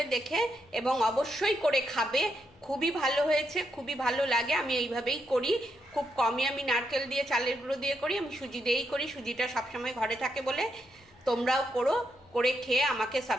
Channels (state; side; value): noise; left; hum, 30 dB below the sound